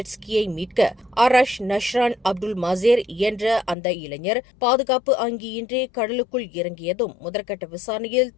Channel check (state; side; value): drops out; right; at 3.8 s